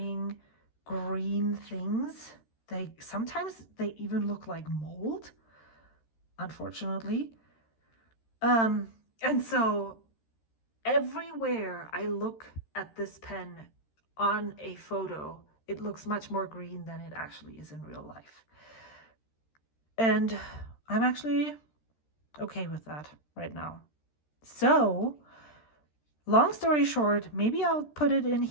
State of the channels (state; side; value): late; right; 13 ms